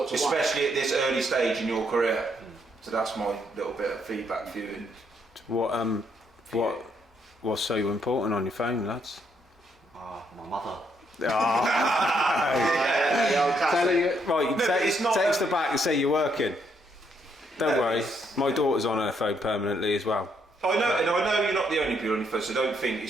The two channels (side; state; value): both; normal; correlation 0.73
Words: to 1? Especially at this early stage in your career. So that's my little bit of feedback for you. What's so important on your phone, lads? My mother. Tell her right, No, it's not text her back and say you're working. Don't worry, my daughter's on her phone permanently as well. I know, and I know you're not the only people on your phone, so don't think